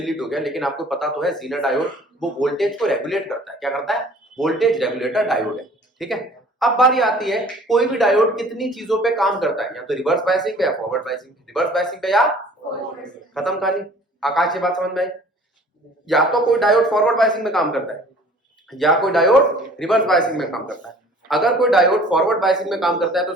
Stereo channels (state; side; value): normal; both; correlation 0.50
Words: हो गया लेकिन आपको पता तो है, जीना डायोड। वो वोल्टेज को रेगुलेट करता है, क्या करता है, वोल्टेज रेगुलेटर डायोड है, ठीक है। अब बारी आती है कोई भी डायोड कितनी चीजों पे काम करता है, या तो रिवर्स बायसिंग पे या फॉरवर्ड बायसिंग, रिवर्स बायसिंग पे या खत्म कहानी। आकाश ये बात समझ में आई, या तो कोई डायोड फॉरवर्ड बायसिंग में काम करता है या कोई डायोड रिवर्स बायसिंग में काम करता है। अगर कोई डायोड फॉरवर्ड बायसिंग में काम करता है तो